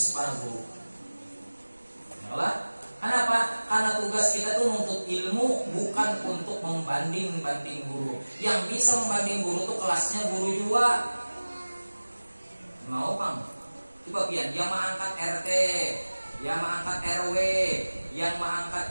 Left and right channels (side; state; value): both; inverted; correlation -1.00